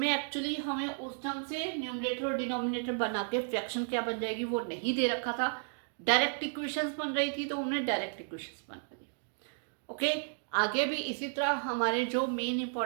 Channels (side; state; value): left; silent; digital silence